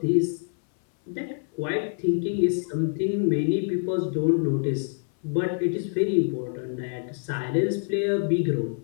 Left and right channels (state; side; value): silent; right; 58 dB below the other